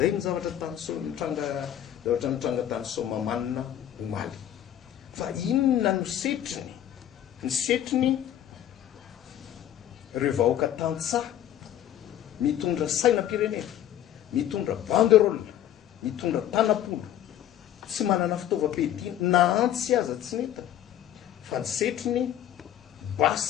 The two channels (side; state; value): right; quieter; 11.3 dB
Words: ny zavatra nitranga tany Somamana omaly. Fa inona no setriny? Ny setriny ireo vahoaka tantsaha mitondra sainam-pirenena, mitondra banderole, mitondra tanapolo, tsy manana fitaovam-piadiana na antsy aza tsy neta fa ny setrony